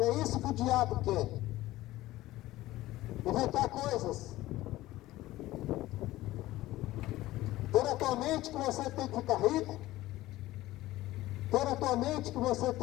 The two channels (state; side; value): quieter; right; 16.6 dB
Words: é isso que o diabo quer. Inventar coisas. Ter a tua mente que você tem que ficar rico. Ter a tua mente que você